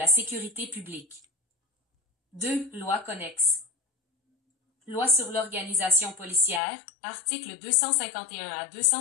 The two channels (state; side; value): drops out; right; at 6.6 s